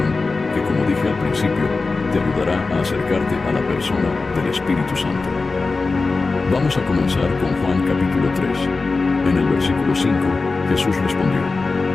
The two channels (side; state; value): right; quieter; 3.9 dB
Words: que, como dije al principio, te ayudará a acercarte a la persona del Espíritu Santo. Vamos a comenzar con Juan capítulo 3. En el versículo 5, Jesús respondió,